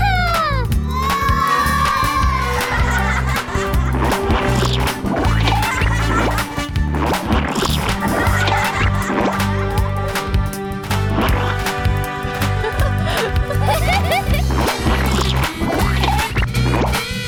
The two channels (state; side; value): identical; both; correlation 1.00